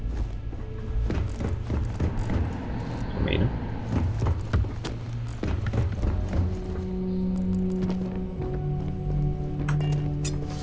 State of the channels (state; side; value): identical; both; correlation 1.00